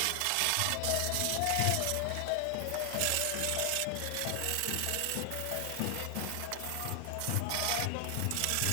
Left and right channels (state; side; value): different; both; correlation 0.00